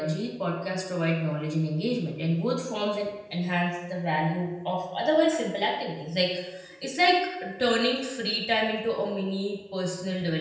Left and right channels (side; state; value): both; identical; correlation 1.00